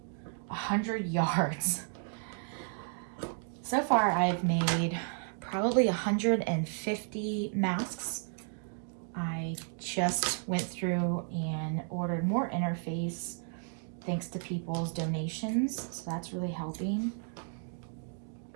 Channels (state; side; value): silent; left; 56 dB below the other